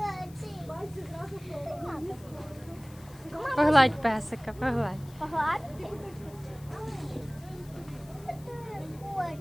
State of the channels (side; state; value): left; noise; hiss, 23 dB below the sound